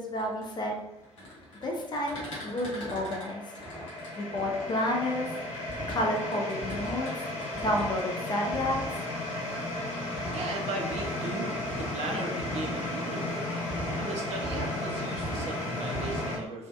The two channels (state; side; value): normal; both; correlation 0.45